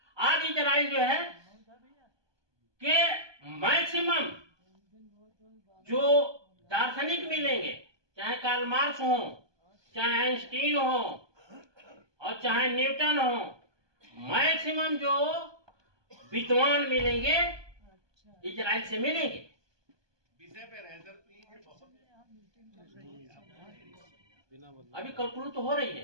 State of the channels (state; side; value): late; left; 1.2 ms